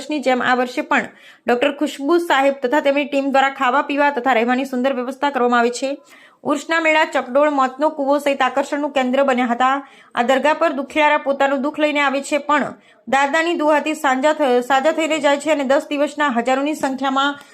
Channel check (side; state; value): both; identical; correlation 1.00